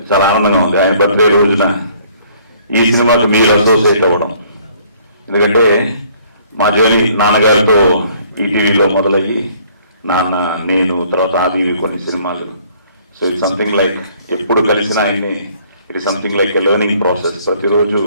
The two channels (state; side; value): inverted; both; correlation -0.60